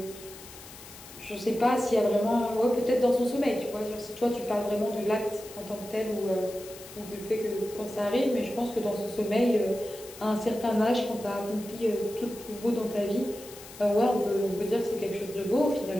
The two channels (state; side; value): noise; left; hiss, 17 dB below the sound